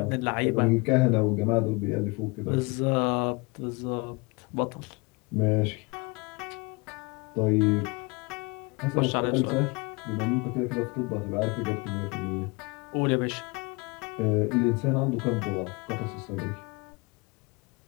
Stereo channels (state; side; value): quieter; right; 28.1 dB